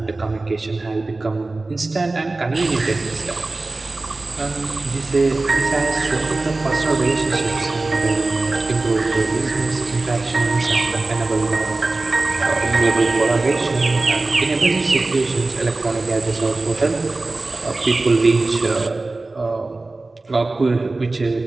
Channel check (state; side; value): quieter; left; 3.2 dB